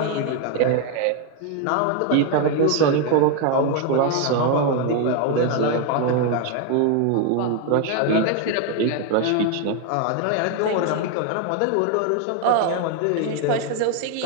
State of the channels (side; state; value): both; different; correlation 0.01